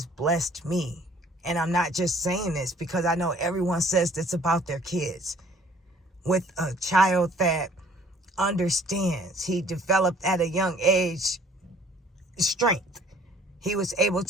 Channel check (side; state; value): both; normal; correlation 0.56